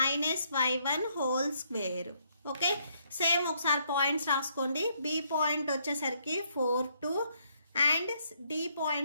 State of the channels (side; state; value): both; inverted; correlation -0.71